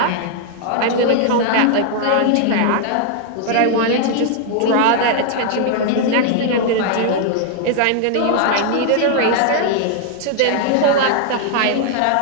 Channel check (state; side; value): different; both; correlation 0.00